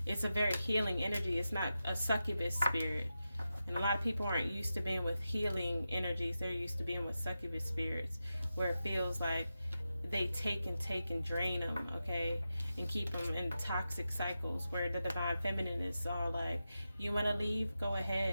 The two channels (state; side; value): inverted; both; correlation -0.91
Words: It's a very healing energy. It's not a succubus spirit. And a lot of people aren't used to being with healing energies. They're used to being with succubus spirits, where it feels like they take and drain them, okay, and keep them in toxic cycles, where the Divine Feminine is all like, you want to leave? Go